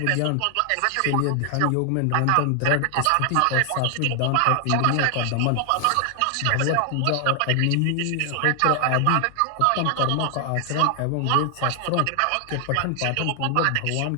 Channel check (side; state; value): both; different; correlation 0.00